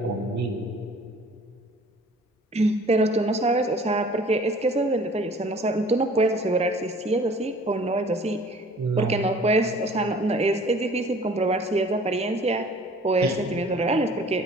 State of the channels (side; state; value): both; normal; correlation 0.51